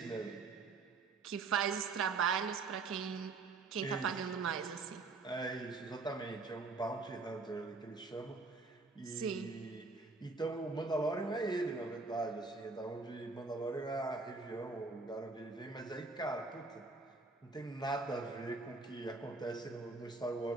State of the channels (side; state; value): left; quieter; 4.0 dB